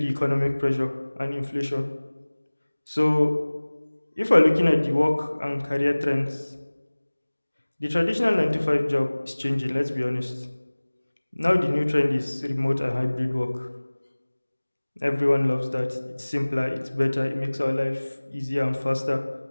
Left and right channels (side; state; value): both; inverted; correlation -1.00